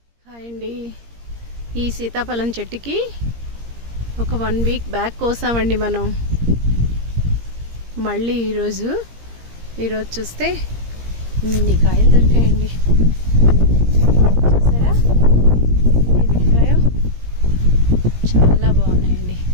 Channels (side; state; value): left; late; 17 ms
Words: Hi అండి. ఈ సీతాఫలం చెట్టుకి ఒక 1 వీక్ బ్యాక్ కోసామండి మనం. మళ్ళీ ఈరోజు చూస్తే ఇన్ని కాయలు దొరికాయండి. చూసారా ఎన్ని దొరికాయో? చాలా బాగున్నాయండి.